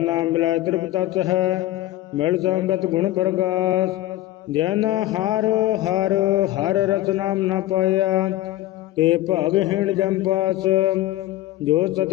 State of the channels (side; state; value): right; quieter; 15.4 dB